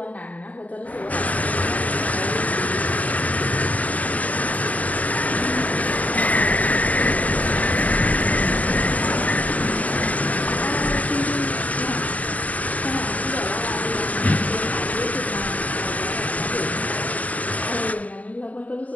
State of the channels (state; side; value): late; right; 0.071 ms